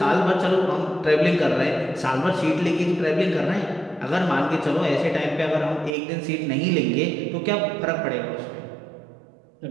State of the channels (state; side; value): drops out; left; at 5.9 s